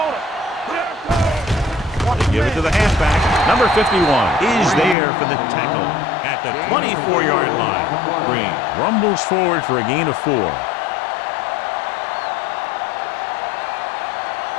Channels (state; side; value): drops out; right; at 5.0 s